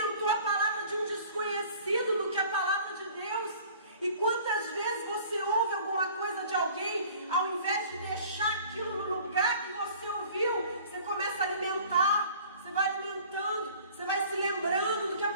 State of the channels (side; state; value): both; inverted; correlation -0.49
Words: a palavra de um desconhecido do que a palavra de Deus. E quantas vezes você ouve alguma coisa de alguém, ao invés de deixar aquilo no lugar que você ouviu, você começa a alimentar, você vai alimentando, você vai se lembrando do que a